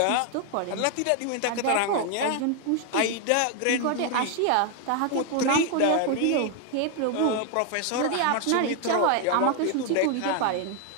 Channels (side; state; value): both; different; correlation 0.00